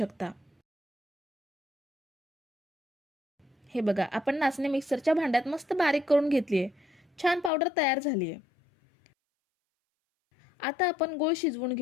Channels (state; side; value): drops out; right; at 7.5 s